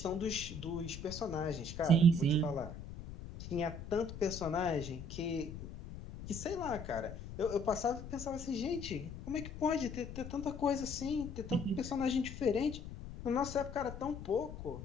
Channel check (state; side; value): noise; left; rumble, 10 dB below the sound